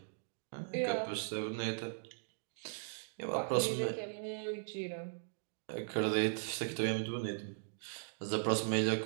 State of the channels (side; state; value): left; silent; digital silence